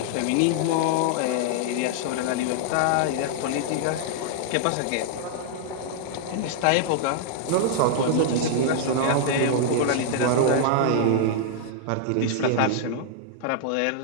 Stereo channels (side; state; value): both; different; correlation -0.01